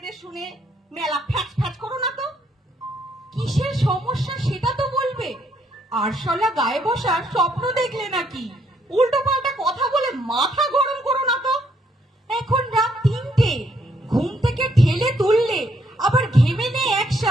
শুনে মেলা ফ্যাচ ফ্যাচ করো না তো। কিসের সমস্যা সেটা তো বলবে। আরশোলা গায়ে বসার স্বপ্ন দেখলে নাকি? উল্টো পাল্টা কথা বলে মাথা গরম করো না তো। এখন রাত 3টে, ঘুম থেকে ঠেলে তুললে আবার ঘেমে নেই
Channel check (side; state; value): both; normal; correlation 0.71